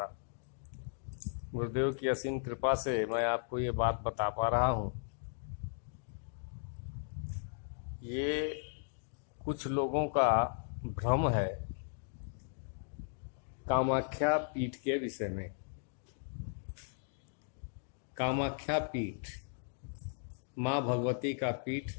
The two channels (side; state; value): right; silent; digital silence